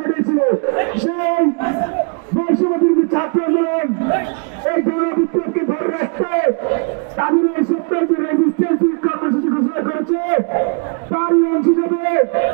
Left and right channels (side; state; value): left; quieter; 38.0 dB